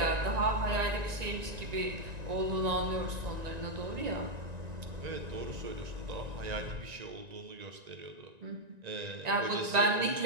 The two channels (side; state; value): left; late; 1.9 ms